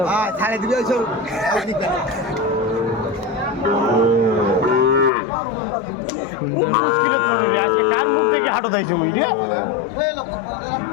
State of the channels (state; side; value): drops out; right; at 5.1 s